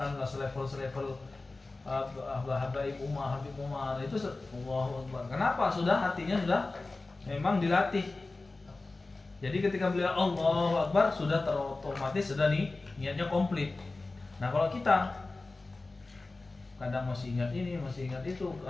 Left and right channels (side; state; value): right; quieter; 3.3 dB